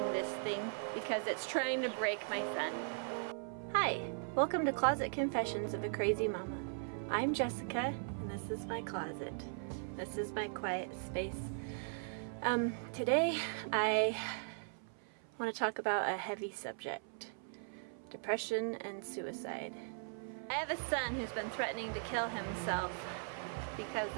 this thing because it's trying to break my son. Hi, welcome to Closet Confessions of a Crazy Mama. I'm Jessica, and this is my closet. This is my quiet space. Today I want to talk about a heavy subject: depression and suicide. I have a son who's been threatening to kill himself because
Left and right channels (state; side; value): silent; left; 52 dB below the other